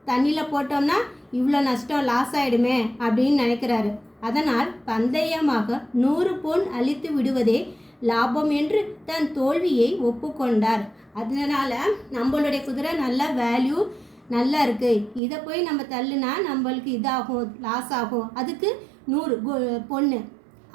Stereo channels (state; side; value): drops out; left; at 15.2 s